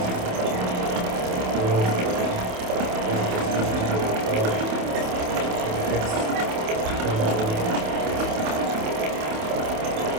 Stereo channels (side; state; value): left; late; 28 ms